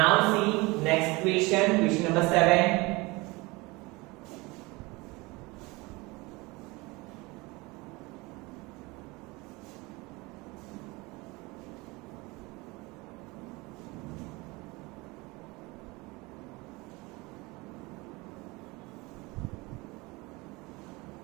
see next question, question number 7।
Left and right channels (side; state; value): left; quieter; 23.9 dB